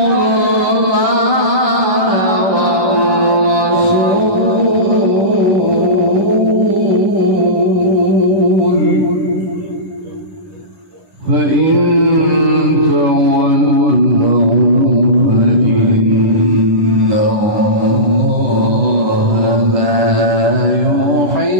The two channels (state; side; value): late; left; 11 ms